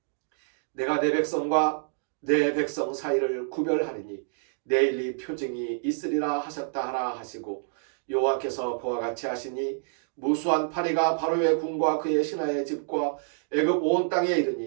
내가 내 백성과 내 백성 사이를 구별하리니 내일 이 표징이 있으리라 하셨다 하라 하시고 여호와께서 그와 같이 하시니 무수한 파리가 바로의 궁과 그의 신하의 집과 애굽 온 땅에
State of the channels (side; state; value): left; silent; digital silence